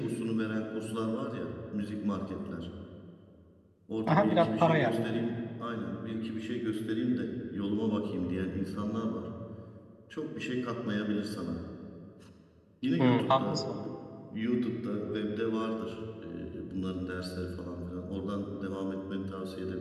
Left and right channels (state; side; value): identical; both; correlation 1.00